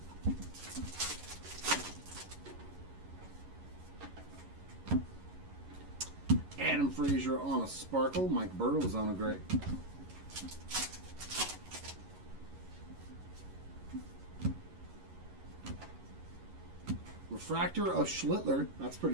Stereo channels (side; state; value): left; late; 11 ms